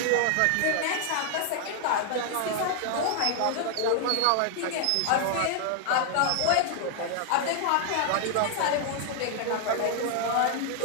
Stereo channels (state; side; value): different; both; correlation 0.00